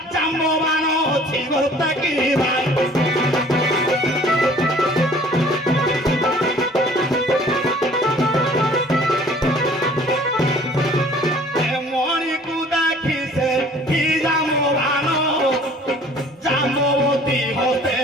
ଜାମ୍ବବାନ ଅଛି ଗୋଟା କି ଭାଇ ମଣିକୁ ଦେଖି ସେ କି ଜାମ୍ବବାନ ଜାମ୍ବବତୀ ହତେ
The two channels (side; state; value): both; normal; correlation 0.52